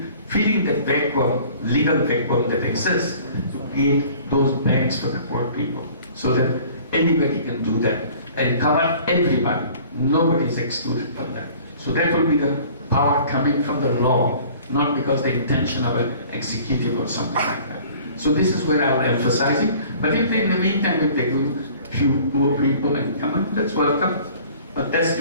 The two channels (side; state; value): both; inverted; correlation -0.50